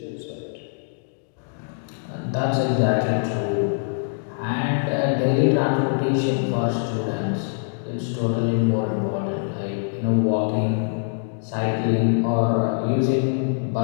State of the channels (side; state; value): right; silent; digital silence